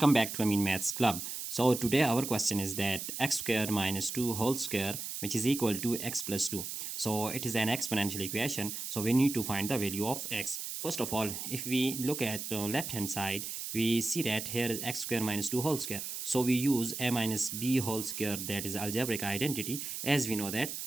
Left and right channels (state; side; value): noise; right; hiss, 6 dB below the sound